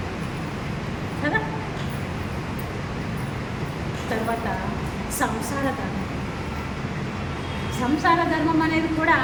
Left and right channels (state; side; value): identical; both; correlation 1.00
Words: కదా. తర్వాత సంసార ధర్మం. సంసార ధర్మం అనేది కూడా